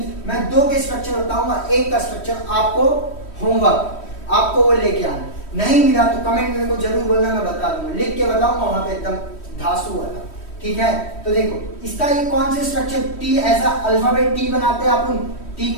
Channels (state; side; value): late; right; 3.1 ms